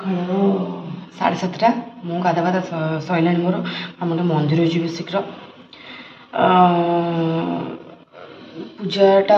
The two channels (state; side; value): identical; both; correlation 1.00